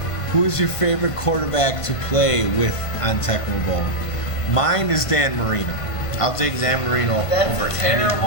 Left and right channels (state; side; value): late; right; 1.5 ms